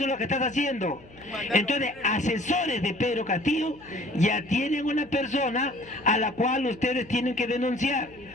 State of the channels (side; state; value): left; noise; hum, 24 dB below the sound